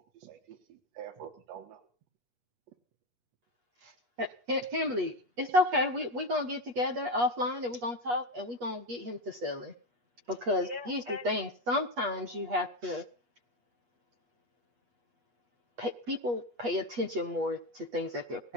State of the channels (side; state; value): left; late; 8.3 ms